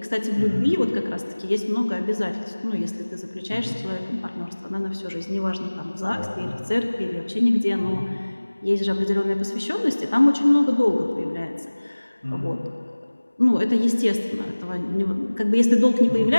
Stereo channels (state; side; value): inverted; both; correlation -1.00